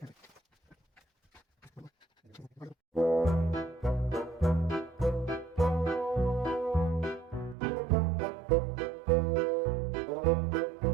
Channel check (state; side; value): drops out; left; at 7.6 s